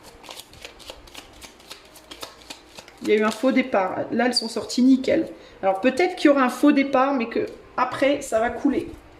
Il y a eu un faux départ. Là, elles sont sorties nickel. Alors, peut-être qu'il y aura un faux départ, mais que après, ça va couler.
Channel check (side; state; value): both; identical; correlation 1.00